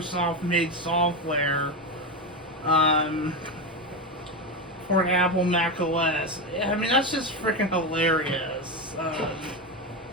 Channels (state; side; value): normal; both; correlation 0.14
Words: software for Apple Mac OS. I mean, that's just freaking hilarious.